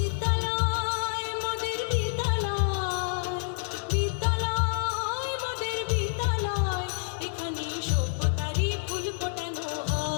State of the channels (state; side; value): silent; right; 59 dB below the other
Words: মোদের বিদ্যালয়, বিদ্যালয় মোদের বিদ্যালয়, এখানে সভ্যতারই ফুল ফোটানো